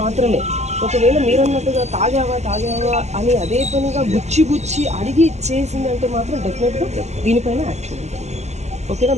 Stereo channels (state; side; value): late; left; 0.33 ms